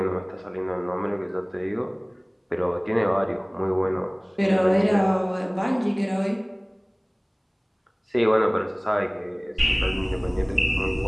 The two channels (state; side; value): identical; both; correlation 1.00